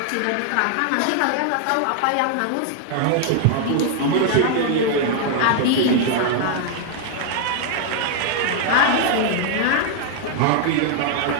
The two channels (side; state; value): both; different; correlation 0.00